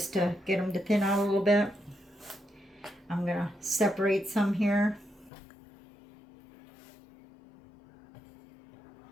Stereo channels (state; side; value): drops out; right; at 5.3 s